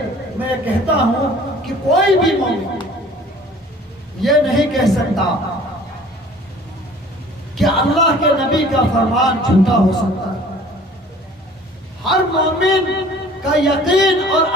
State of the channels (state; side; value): normal; both; correlation 0.50